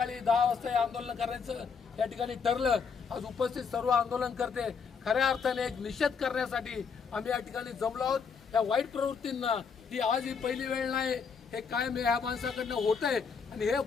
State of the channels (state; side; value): quieter; right; 5.8 dB